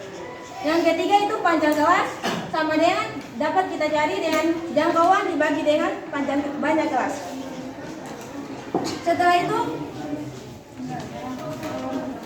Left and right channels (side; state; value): both; identical; correlation 1.00